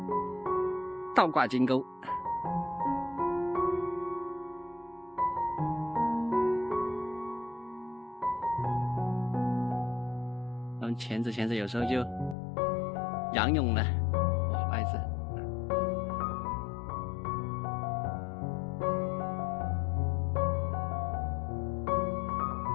倒挂金钩。然后潜着潜着，有时候就仰泳了，哇，不好意思。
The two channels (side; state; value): right; drops out; at 12.4 s